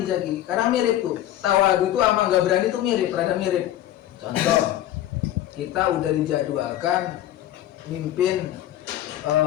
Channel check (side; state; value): right; quieter; 12.9 dB